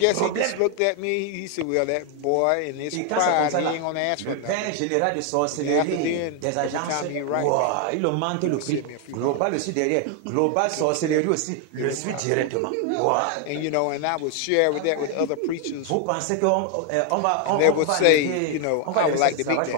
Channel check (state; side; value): different; both; correlation 0.01